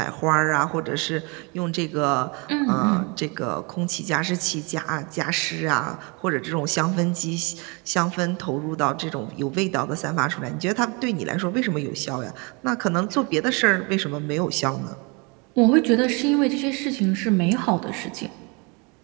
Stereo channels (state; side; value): quieter; left; 30.5 dB